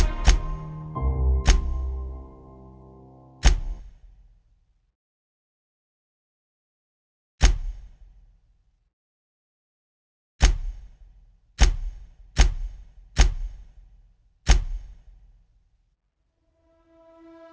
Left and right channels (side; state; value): both; identical; correlation 1.00